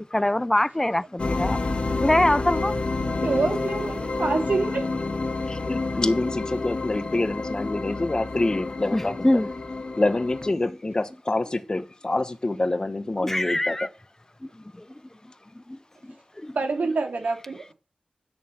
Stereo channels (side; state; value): both; normal; correlation 0.95